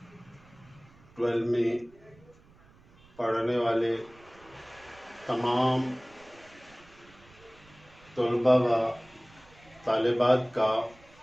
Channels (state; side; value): noise; right; rumble, 27 dB below the sound